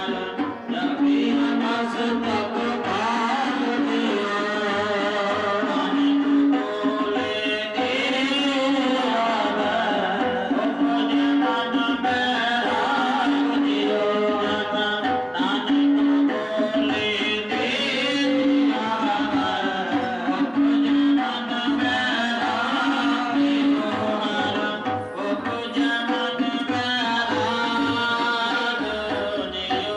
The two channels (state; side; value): identical; both; correlation 1.00